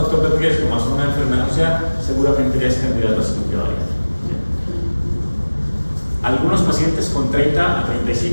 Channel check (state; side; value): inverted; both; correlation -1.00